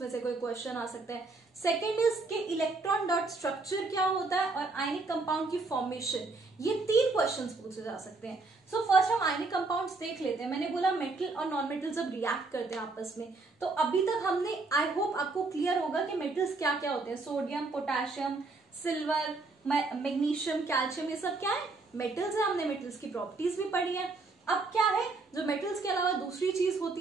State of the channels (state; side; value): quieter; left; 3.6 dB